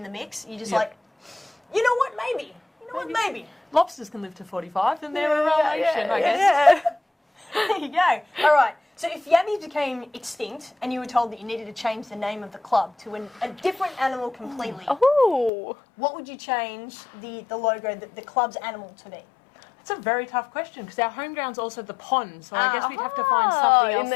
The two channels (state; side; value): drops out; right; at 15.5 s